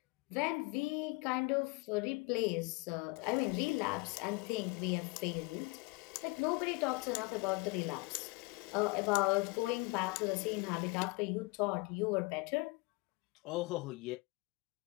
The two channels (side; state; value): right; quieter; 26.0 dB